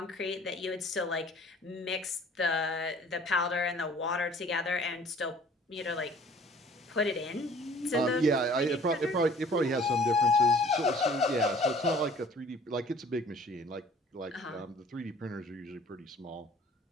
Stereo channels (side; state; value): both; normal; correlation 0.52